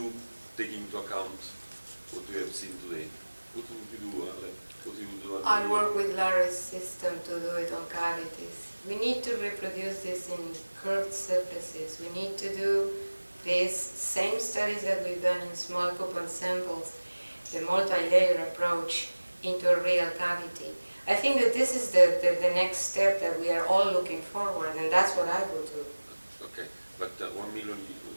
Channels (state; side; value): inverted; both; correlation -1.00